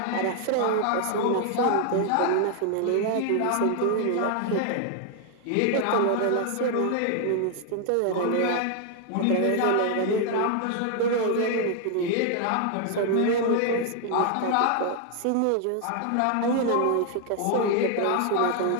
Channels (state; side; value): different; both; correlation 0.00